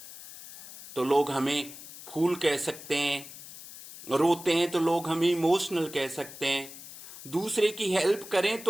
तो लोग हमें फूल कह सकते हैं, रोते हैं तो लोग हमें इमोशनल कह सकते हैं, दूसरे की हेल्प करें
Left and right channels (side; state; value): left; noise; hiss, 15 dB below the sound